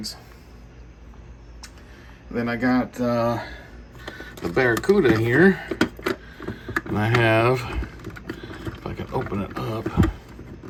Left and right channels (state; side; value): identical; both; correlation 1.00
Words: And then I got the Barracuda here, and I have, if I can open it up,